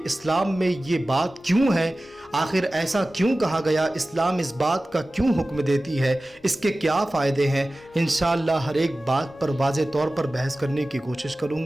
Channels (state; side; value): normal; both; correlation 0.96